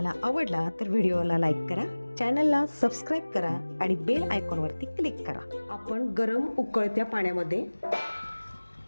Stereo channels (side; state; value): both; inverted; correlation -1.00